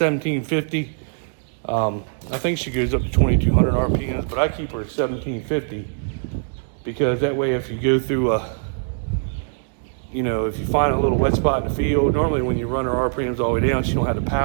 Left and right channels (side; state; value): left; silent; digital silence